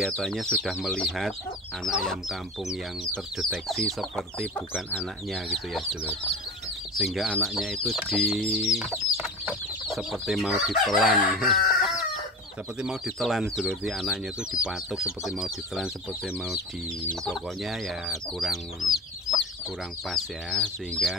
sudah melihat anak ayam kampung yang terdeteksi seperti bukan anaknya gitu ya sedulur. Sehingga anaknya itu seperti mau ditelan. Seperti mau ditelan dulu, anaknya itu dipatuk seperti mau ditelan, seperti mau pokoknya ya kurang pas ya.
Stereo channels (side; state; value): both; normal; correlation 0.30